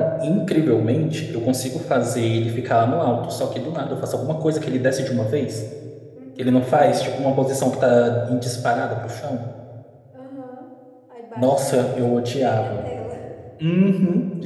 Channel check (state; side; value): identical; both; correlation 1.00